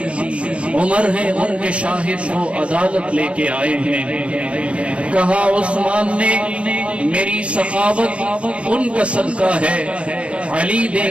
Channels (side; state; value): left; late; 0.060 ms